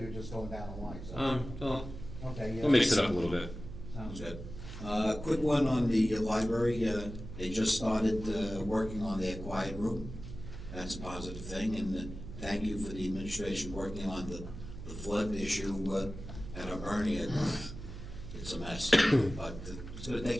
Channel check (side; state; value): right; noise; hum, 11 dB below the sound